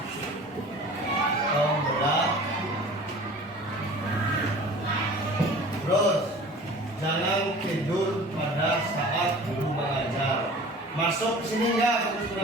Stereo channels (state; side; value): normal; both; correlation 0.43